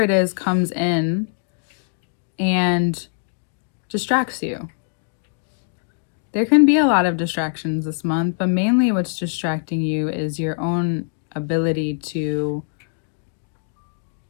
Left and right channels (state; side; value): silent; right; digital silence